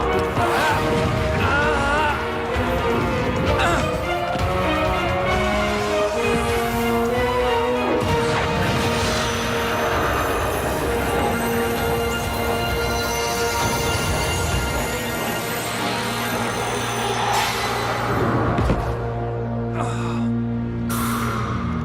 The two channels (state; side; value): identical; both; correlation 1.00